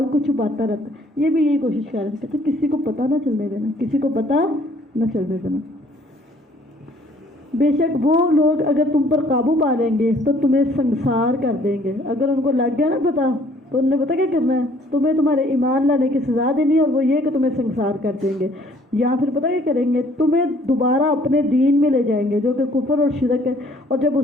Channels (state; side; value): normal; both; correlation 0.59